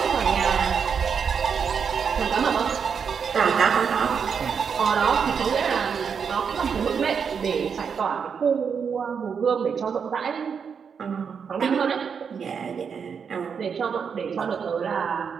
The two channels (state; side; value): quieter; left; 6.5 dB